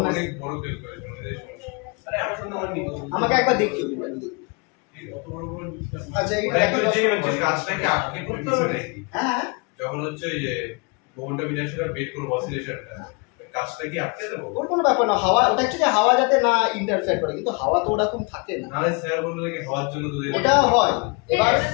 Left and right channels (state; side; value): quieter; right; 30.9 dB